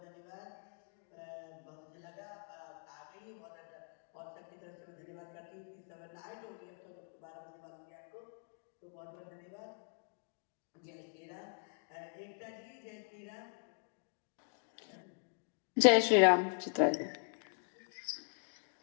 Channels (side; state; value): right; silent; 51 dB below the other